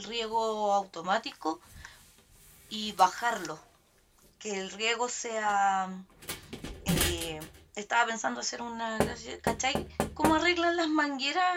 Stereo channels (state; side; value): identical; both; correlation 1.00